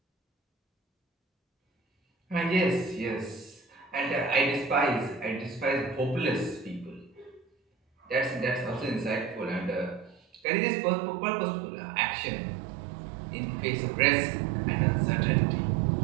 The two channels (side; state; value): left; drops out; at 10.4 s